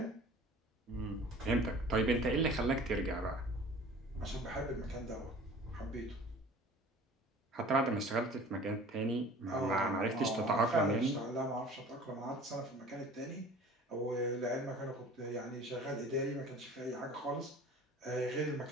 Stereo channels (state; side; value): normal; both; correlation 0.45